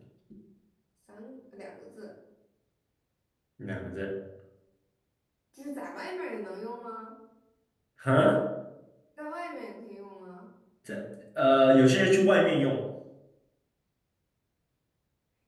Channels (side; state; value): both; identical; correlation 1.00